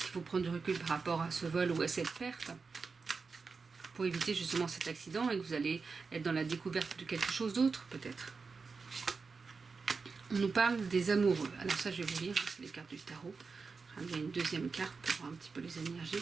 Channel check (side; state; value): left; quieter; 4.7 dB